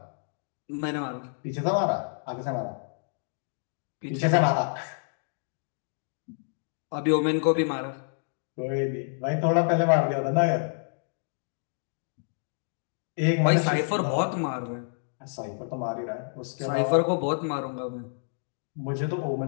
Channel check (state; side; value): silent; right; digital silence